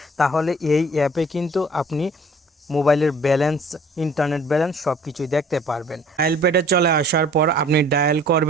তাহলে এই অ্যাপে কিন্তু আপনি মোবাইলের ব্যালেন্স, ইন্টারনেট ব্যালেন্স সব কিছুই দেখতে পারবেন। ডায়াল প্যাডে চলে আসার পর আপনি ডায়াল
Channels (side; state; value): both; normal; correlation 0.53